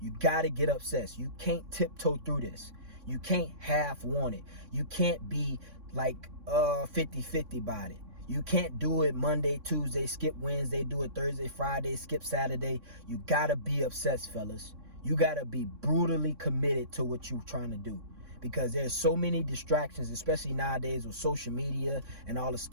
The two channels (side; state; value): left; late; 3.6 ms